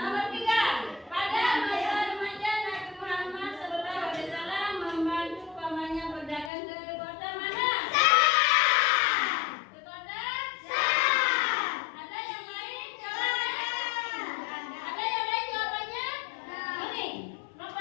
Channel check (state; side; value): drops out; right; at 6.5 s